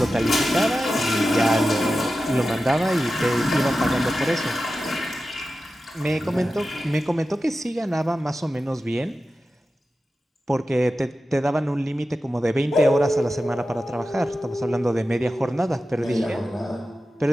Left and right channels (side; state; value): both; normal; correlation 0.93